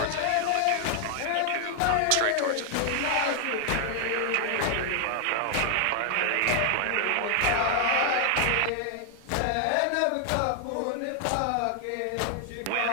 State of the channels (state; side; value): different; both; correlation 0.00